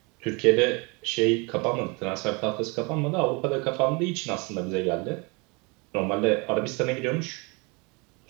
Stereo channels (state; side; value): quieter; left; 29.5 dB